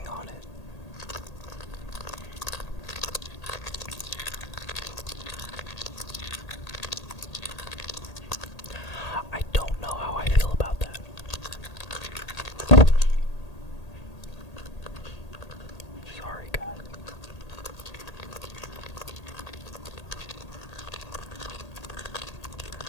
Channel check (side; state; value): right; late; 1.8 ms